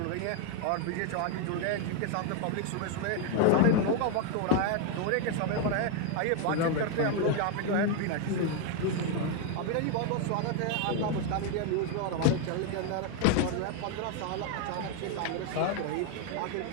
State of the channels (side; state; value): both; different; correlation 0.01